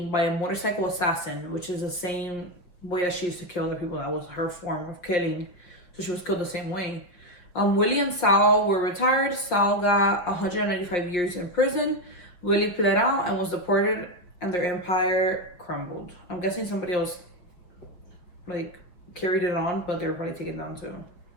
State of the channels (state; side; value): late; right; 5.8 ms